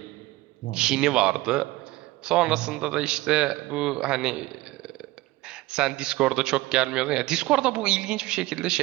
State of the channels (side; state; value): left; quieter; 19.0 dB